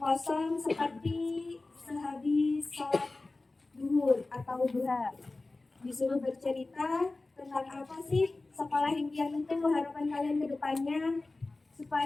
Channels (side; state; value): right; quieter; 3.3 dB